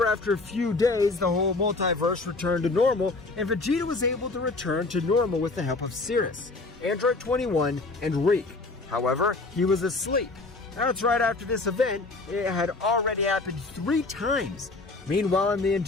after a few days, the whole multiverse returned to normal, and Vegeta was able to return to normal with the help of Cirrus, Android 21, and Rick. However, he was asleep. That's right, after this event, it had already happened 3 times. Meanwhile, in the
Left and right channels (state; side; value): quieter; right; 3.5 dB